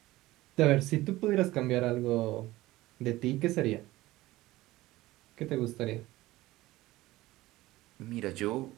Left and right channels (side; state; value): left; quieter; 17.8 dB